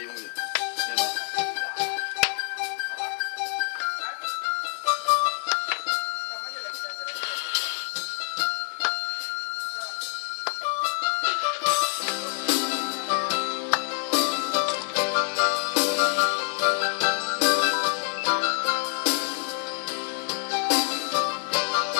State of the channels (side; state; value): right; silent; digital silence